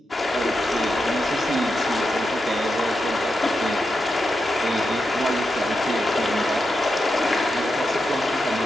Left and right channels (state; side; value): normal; both; correlation 0.87